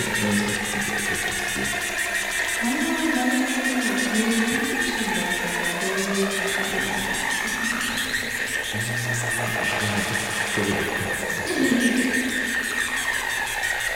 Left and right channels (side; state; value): both; identical; correlation 1.00